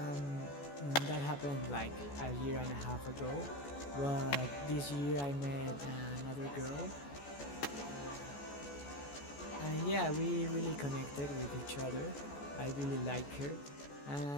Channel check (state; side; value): late; right; 14 ms